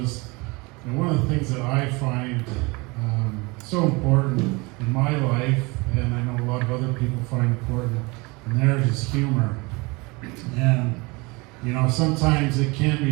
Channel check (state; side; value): quieter; left; 26.0 dB